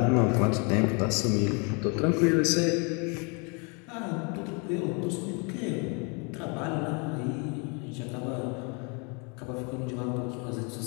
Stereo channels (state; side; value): quieter; right; 33.8 dB